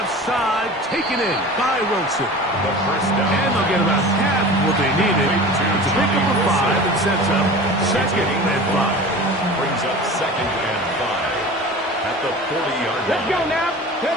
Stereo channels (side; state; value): both; normal; correlation 0.37